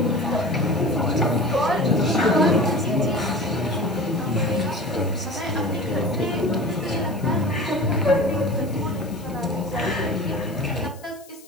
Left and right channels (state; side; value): noise; left; hiss, 23 dB below the sound